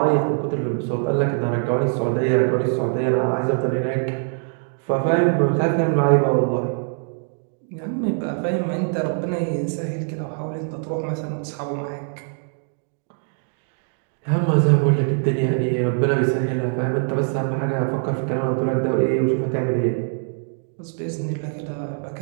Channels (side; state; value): left; silent; 58 dB below the other